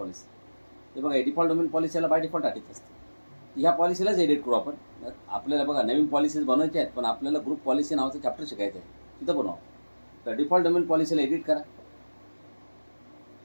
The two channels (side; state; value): both; inverted; correlation -1.00